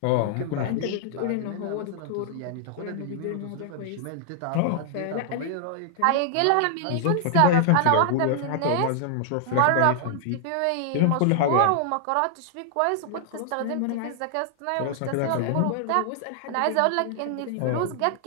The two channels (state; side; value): different; both; correlation -0.01